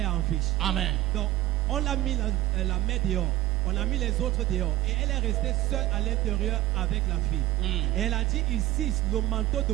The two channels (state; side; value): quieter; left; 15.2 dB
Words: en vie. Amen. Donc, on l'a mis la mère dehors. On a mis les autres dehors. Et elle est restée seule à l'intérieur avec la fille. Et elle a dit ici, le manteau de